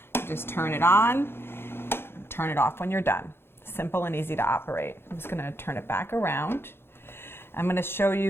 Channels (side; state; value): right; late; 0.11 ms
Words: You just turn it on, turn it off when you're done. Simple and easy to operate. I'm just going to turn it back around. I'm going to show